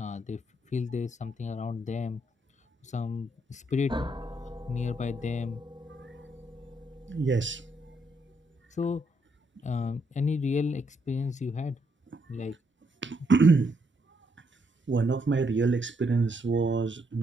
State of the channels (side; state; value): both; normal; correlation 0.75